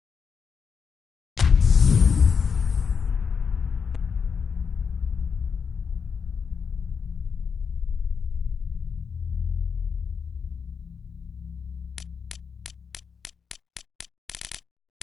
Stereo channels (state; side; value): quieter; right; 6.1 dB